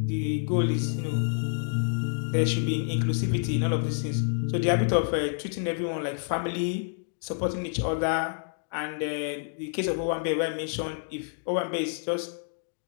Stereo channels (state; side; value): silent; right; digital silence